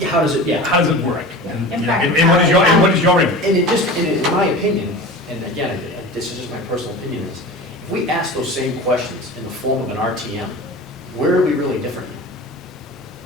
how does it, how does it work? And, In you know, fact, and what is your input? And it just, in my opinion, and again, this is just my personal opinion, is if we ask those same questions in the form of an RTM, where are we really different?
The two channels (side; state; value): both; normal; correlation 0.34